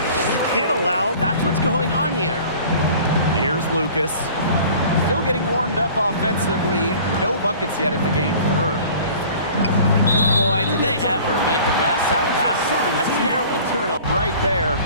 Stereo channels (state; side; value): inverted; both; correlation -0.46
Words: You can't allow... That's what's going on here. Here's Lucas. Still getting warmed up offensively. No buckets yet in the game for her. Boy, did they ever make a mess out of that one. A terrible turnover. Right there.